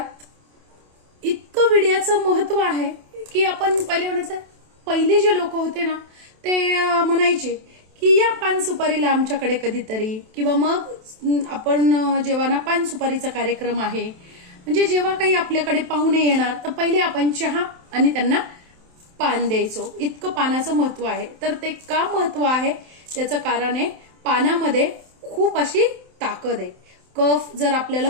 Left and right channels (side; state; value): left; late; 27 ms